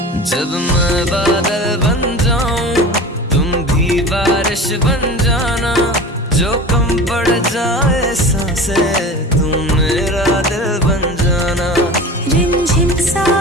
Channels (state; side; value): normal; both; correlation 0.35